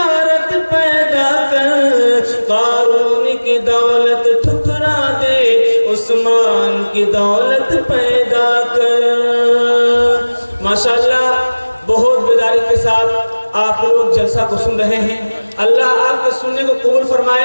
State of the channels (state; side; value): inverted; both; correlation -1.00